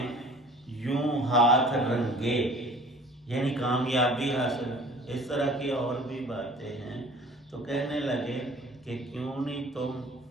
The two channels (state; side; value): normal; both; correlation 0.48